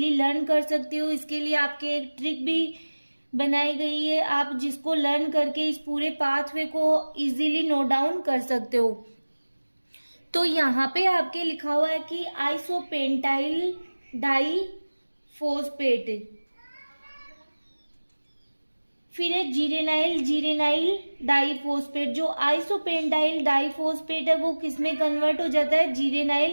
लर्न कर सकते हो। इसके लिए आपके एक ट्रिक भी बनाई गई है, आप जिसको लर्न करके इस पूरे पाथवे को इजीली नोट डाउन कर सकते हो। तो यहाँ पे आपके लिखा हुआ है कि आइसोपेंटाइल डाइफॉस्फेट, फिर है जीरेनाइल डाइफॉस्फेट। जो आइसोपेंटाइल डाइफॉस्फेट है वो किसमें कन्वर्ट हो जाता है,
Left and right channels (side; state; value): both; inverted; correlation -1.00